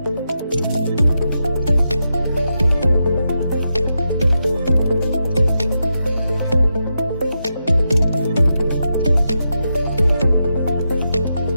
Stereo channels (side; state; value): both; inverted; correlation -0.86